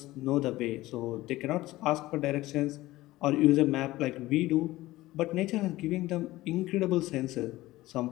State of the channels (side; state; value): right; quieter; 17.5 dB